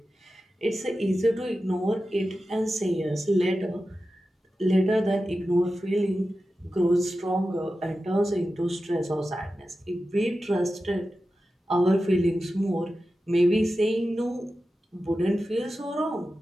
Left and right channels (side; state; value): both; normal; correlation 0.93